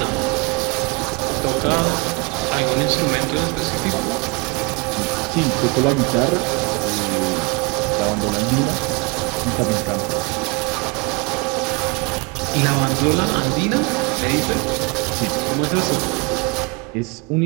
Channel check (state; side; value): quieter; left; 30.0 dB